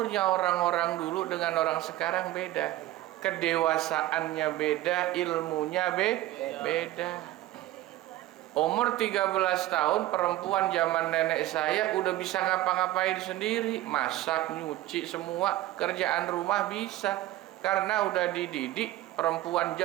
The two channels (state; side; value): quieter; left; 15.4 dB